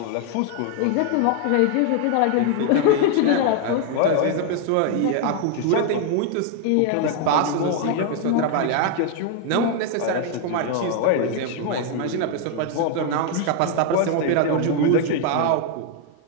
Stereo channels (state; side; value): different; both; correlation 0.00